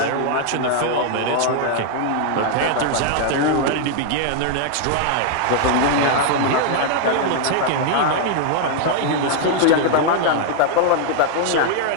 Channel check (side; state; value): both; different; correlation 0.00